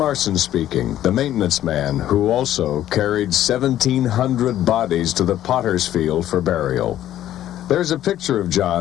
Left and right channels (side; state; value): right; quieter; 12.4 dB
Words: speaking, the maintenance man who also carried 1,700 bodies to the potter's field for burial. There's a picture of